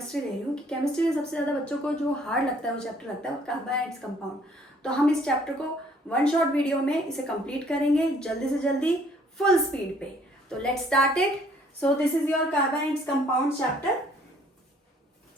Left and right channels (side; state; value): both; normal; correlation 0.61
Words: ले रही हूँ कि केमिस्ट्री में सबसे ज़्यादा बच्चों को जो हार्ड लगता है वो चैप्टर लगता है वो कार्बन एंड इट्स कंपाउंड। तो हम इस चैप्टर को वन शॉट वीडियो में इसे कंप्लीट करेंगे जल्दी से जल्दी, फुल स्पीड पे। तो let's start it. So this is your carbon and its compound chapter.